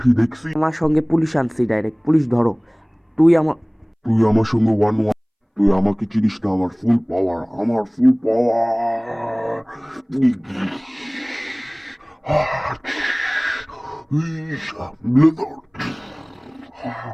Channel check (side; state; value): both; identical; correlation 1.00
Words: দেখছি। আমার সঙ্গে পুলিশ আনছি, ডাইরেক্ট পুলিশ ধরো। তুই আমার তুই আমার সঙ্গে ওয়ান ওয়ান, তুই আমাকে চিনিস না, আমার ফুল পাওয়ার, আমার ফুল পাওয়ার।